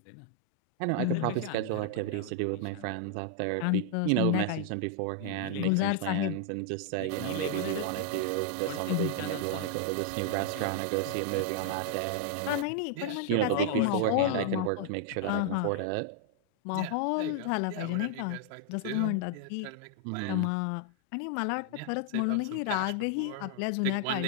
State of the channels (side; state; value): both; different; correlation 0.00